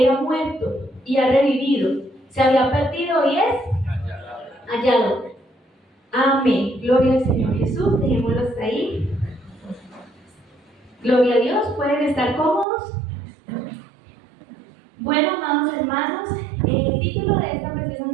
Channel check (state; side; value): drops out; left; at 12.7 s